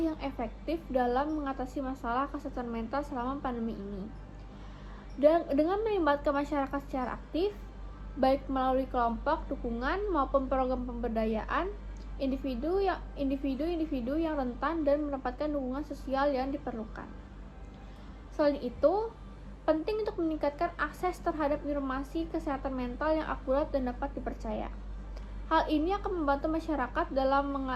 efektif dalam mengatasi masalah kesehatan mental selama pandemi ini. Dan dengan melibatkan masyarakat secara aktif, baik melalui kelompok dukungan maupun program pemberdayaan, individu yang rentan dan mendapatkan dukungan sosial yang diperlukan. Selain itu, penting untuk meningkatkan akses terhadap informasi kesehatan mental yang akurat dan dapat dipercaya. Hal ini akan membantu masyarakat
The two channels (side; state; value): both; identical; correlation 1.00